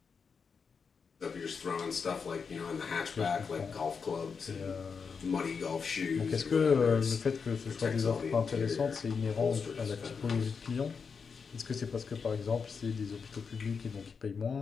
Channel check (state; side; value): quieter; right; 5.7 dB